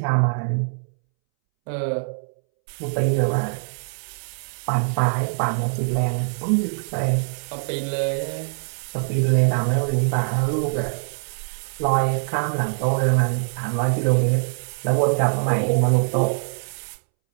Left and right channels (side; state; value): left; silent; 63 dB below the other